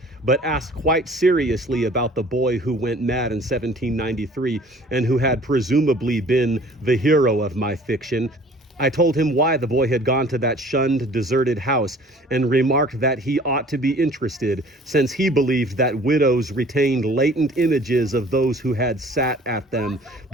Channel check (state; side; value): normal; both; correlation 0.51